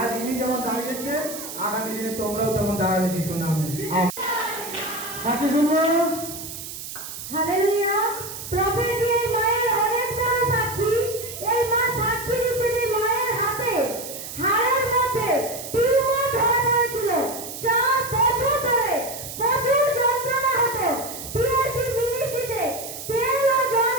ইনি যেমন দাঁড়িয়েছে, আগামী দিনে তোমরাও তেমন দাঁড়াবে যিশু নামে। সাক্ষী শুনবো। হালেলুয়া। প্রভু যে মায়ের অনেক বড় সাক্ষী, এই মা সাক্ষী দিচ্ছেন এই মায়ের হাতে হাড়ের মধ্যে টিউমার ধরা পড়েছিল। 4 বছর ধরে প্রচুর যন্ত্রণা হতো। পিএইচডি মিনিস্ট্রিতে তেল ও জল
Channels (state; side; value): noise; right; hiss, 10 dB below the sound